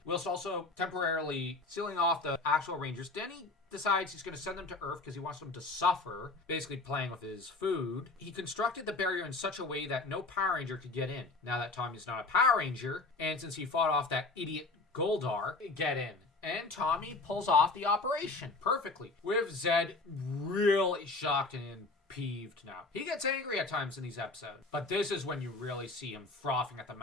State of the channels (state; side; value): quieter; right; 3.5 dB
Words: whilst also temporarily sealing off the actual Rangers. Then he decides he's going to send them to Earth because he wants them to suffer, basically playing with his food. He constructed the barrier in such a way that no Power Ranger could get in. Now that Tommy's not a Power Ranger, and since he fought off that idiot Goldar, get in. And Tommy pulls off the operation perfectly, with Zed really shocked and peeved now. He gets angry at times in these episodes, but this is when you really see him frothing at the